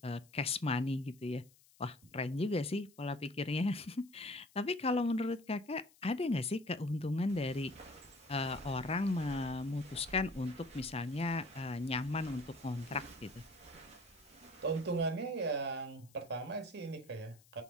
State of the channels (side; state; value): left; noise; hiss, 28 dB below the sound